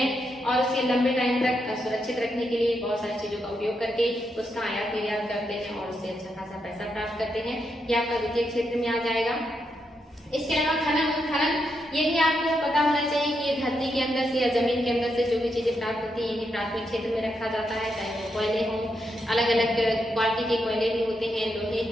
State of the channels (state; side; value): normal; both; correlation 0.82